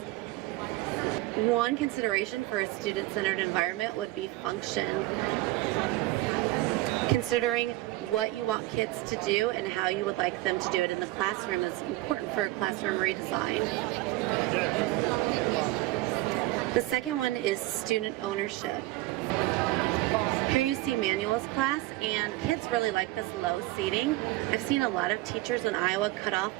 One consideration for a student-centered environment would be function. Considering what you want kids to do and how you would like them to do it in the classroom is important for a classroom redesign. The second one is student ownership. Here you see manuals class, and kids really like this low seating. I've seen a lot of teachers in Iowa cut off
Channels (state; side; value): quieter; left; 18.6 dB